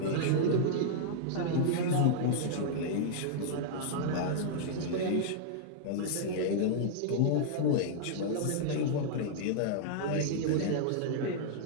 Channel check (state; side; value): different; both; correlation -0.02